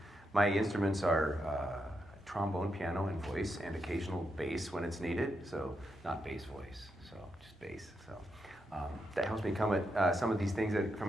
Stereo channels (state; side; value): normal; both; correlation 0.83